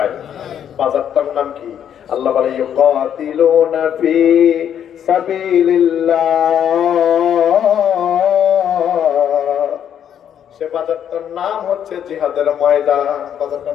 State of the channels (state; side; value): quieter; right; 9.3 dB